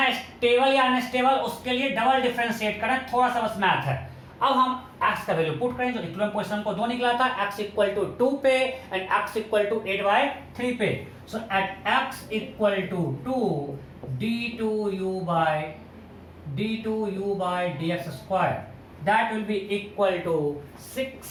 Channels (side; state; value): both; identical; correlation 1.00